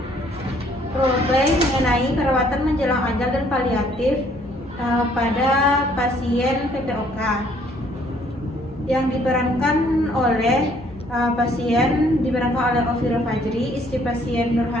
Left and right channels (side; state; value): both; normal; correlation 0.62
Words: roleplay mengenai perawatan menjelang ajal dan paliatif pada pasien PPOK yang diperankan oleh Ofira Fajri, istri pasien